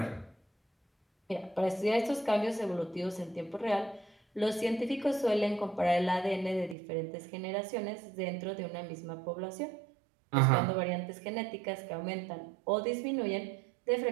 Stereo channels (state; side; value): drops out; left; at 6.8 s